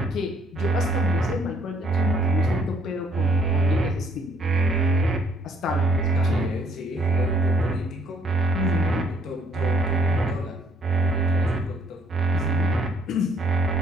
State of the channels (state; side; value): normal; both; correlation 0.64